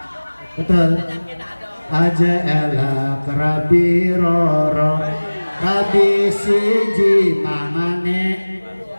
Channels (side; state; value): both; inverted; correlation -1.00